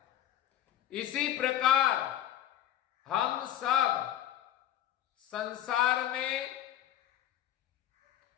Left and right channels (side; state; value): right; quieter; 11.7 dB